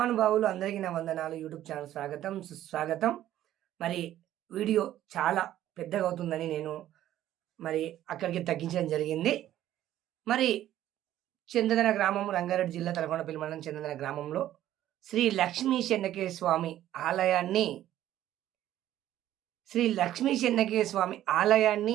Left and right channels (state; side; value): quieter; left; 12.8 dB